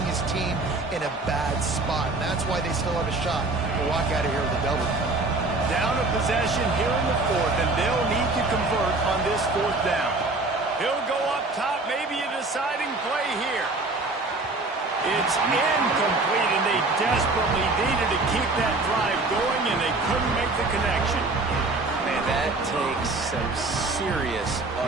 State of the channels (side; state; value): left; quieter; 3.2 dB